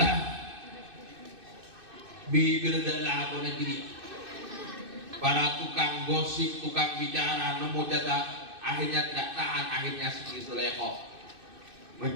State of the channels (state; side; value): late; left; 2.6 ms